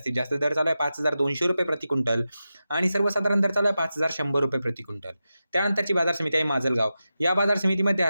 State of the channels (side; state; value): both; inverted; correlation -0.92